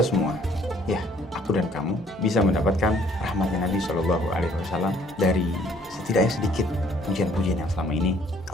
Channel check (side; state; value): both; normal; correlation 0.60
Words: semua, ya aku dan kamu, bisa mendapatkan rahmatnya Nabi SAW dari setidaknya sedikit pujian-pujian yang selama ini